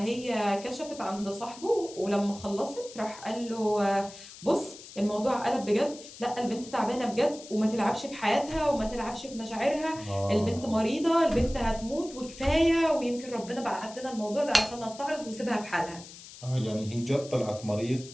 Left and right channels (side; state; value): left; noise; hiss, 16 dB below the sound